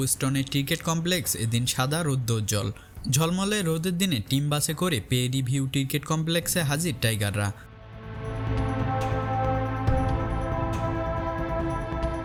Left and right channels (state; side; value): identical; both; correlation 1.00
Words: ক্রিকেট কমপ্লেক্স এদিন সাদা রৌদ্রোজ্জ্বল। ঝলমলে রোদের দিনে টিম বাসে করে পেরি ভিউ ক্রিকেট কমপ্লেক্সে হাজির টাইগাররা।